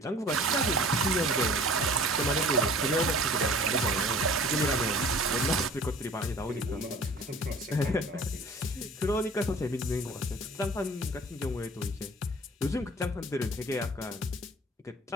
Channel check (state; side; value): normal; both; correlation 0.47